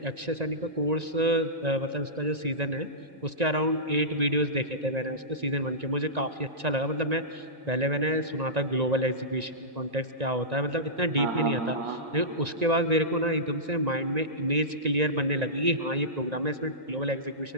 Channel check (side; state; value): left; late; 1.9 ms